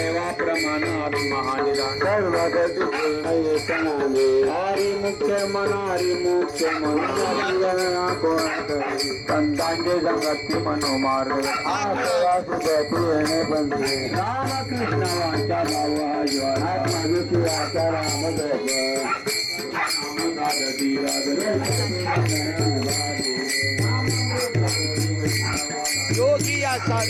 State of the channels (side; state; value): both; identical; correlation 1.00